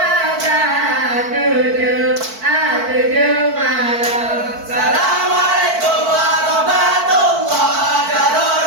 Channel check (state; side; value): late; left; 4.5 ms